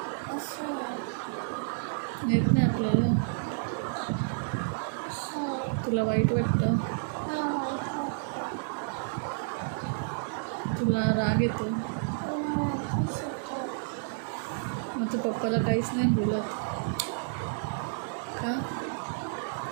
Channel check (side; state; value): left; silent; digital silence